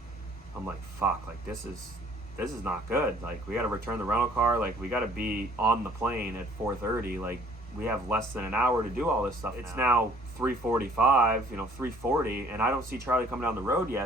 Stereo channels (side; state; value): both; normal; correlation 0.57